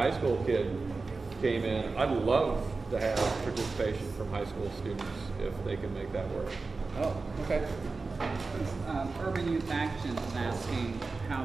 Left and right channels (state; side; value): quieter; left; 4.0 dB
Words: school kid came in. I'd love to have participation from high school students if they can make that work. Oh, okay. Urban Youth Action is asking how